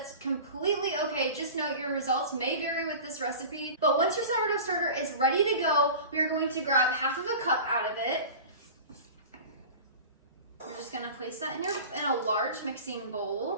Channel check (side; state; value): both; inverted; correlation -0.36